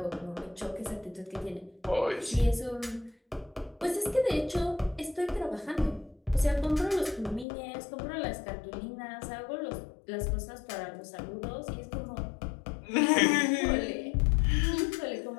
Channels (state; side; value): drops out; right; at 7.5 s